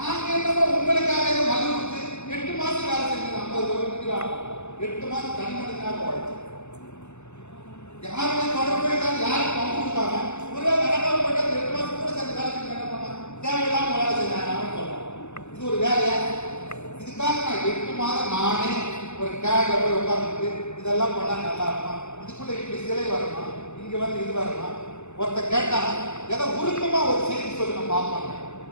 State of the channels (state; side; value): late; right; 0.82 ms